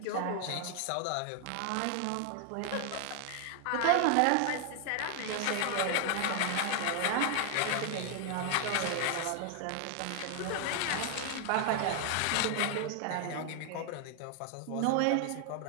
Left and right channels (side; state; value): both; different; correlation 0.00